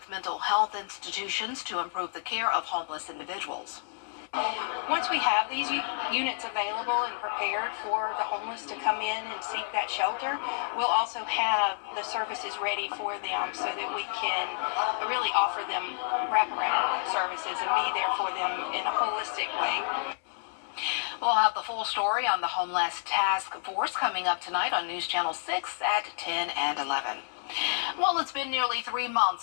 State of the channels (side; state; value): right; silent; 58 dB below the other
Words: mental health institutions to improve the care of homeless individuals. Once we have these units available and prepared for the homeless to come in and seek that shelter, we'll also have the services ready for them so that we can really offer them wraparound services and be there for them in a holistic way. We'll have the full story on the Homeless Task Force coming up tonight on News Channel 6 at 10 and 11. Well, it's been nearly 3